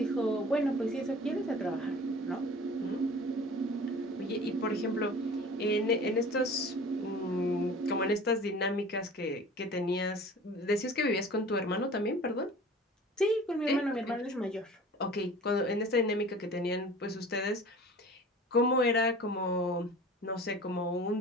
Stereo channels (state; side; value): normal; both; correlation 0.43